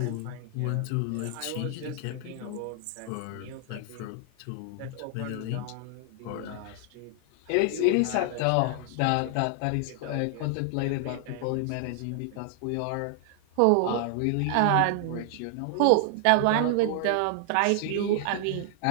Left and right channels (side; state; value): both; different; correlation 0.00